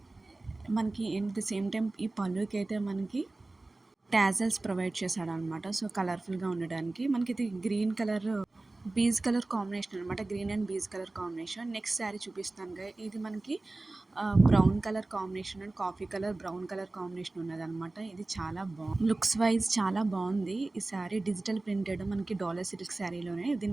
మనకి ఎట్ ద సేమ్ టైం ఈ పళ్ళుకి అయితే మనకి టాజల్స్ ప్రొవైడ్ చేశాడు అనమాట. సో కలర్ఫుల్గా ఉండడానికి మనకి ఇది green colour beige colour combination అనమాట. Green and beige colour combination. Next sari చూపిస్తాను. ఇది మనకి brown colour combination and coffee colour brown colour combination ఉన్నదనమాట. ఇది చాలా బాగుంది, లుక్స్ వైజ్ చాలా బాగుంది. ఈ శారీ డిజిటల్ ప్రింటెడ్ మనకి డాలర్ సిల్క్ శారీలోనే.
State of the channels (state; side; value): quieter; left; 3.0 dB